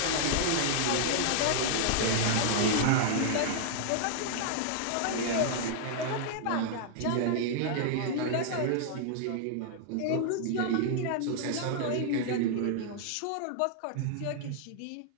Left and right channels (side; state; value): both; different; correlation -0.01